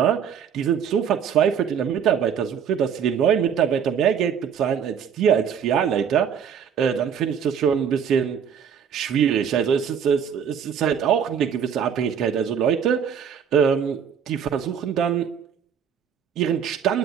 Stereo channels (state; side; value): quieter; left; 7.8 dB